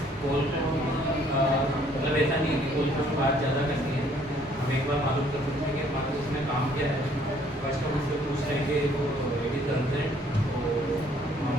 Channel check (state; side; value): normal; both; correlation 0.62